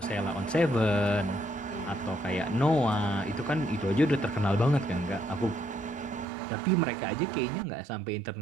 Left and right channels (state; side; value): drops out; left; at 6.2 s